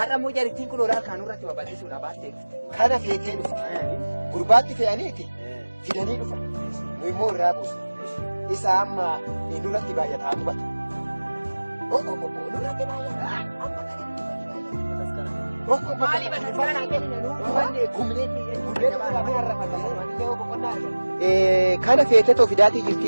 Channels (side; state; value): both; inverted; correlation -1.00